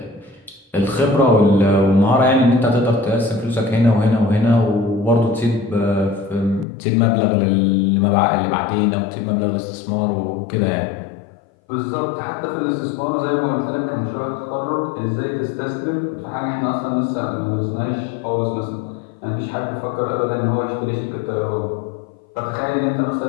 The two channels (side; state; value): right; drops out; at 6.7 s